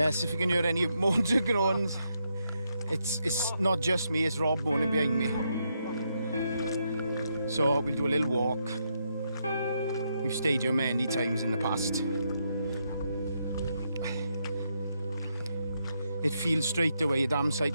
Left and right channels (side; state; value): both; inverted; correlation -0.80